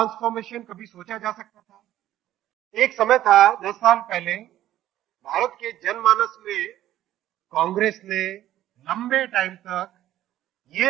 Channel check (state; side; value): quieter; left; 13.2 dB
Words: कभी सोचा जा सकता था? एक समय था 10 साल पहले, भारत के जनमानस में कांग्रेस ने लंबे टाइम तक